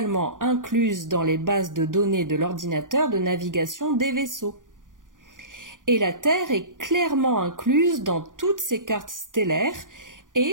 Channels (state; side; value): late; left; 0.88 ms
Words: incluses dans les bases de données de l'ordinateur de navigation des vaisseaux. Et la Terre est clairement incluse dans toutes ces cartes stellaires